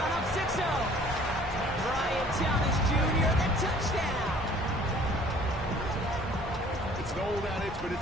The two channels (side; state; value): both; normal; correlation 0.53